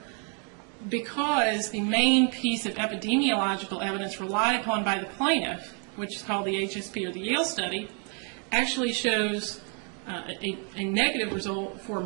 because the main piece of epidemiological evidence relied upon by the plaintiff, which is called the HSP or the Yale study, actually shows a negative result for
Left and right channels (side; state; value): left; quieter; 39.5 dB